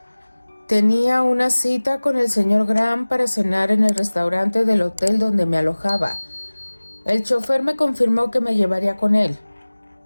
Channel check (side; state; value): both; inverted; correlation -1.00